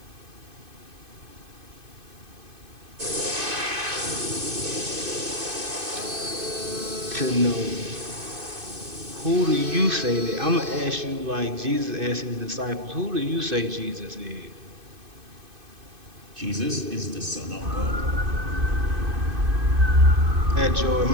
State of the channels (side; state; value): left; late; 2.5 ms